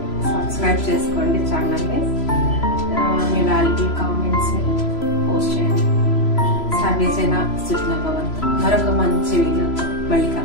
సబ్స్క్రైబ్ చేసుకోండి ఛానల్ని. మీ వాల్యుబుల్ కామెంట్స్ని పోస్ట్ చేయండి. సర్వేజన సుఖినో భవంతు. మరొక మంచి వీడియోతో మళ్ళీ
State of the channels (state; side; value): late; right; 3.0 ms